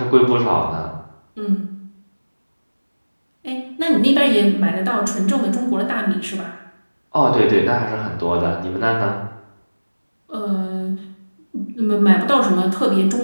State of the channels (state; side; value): inverted; both; correlation -1.00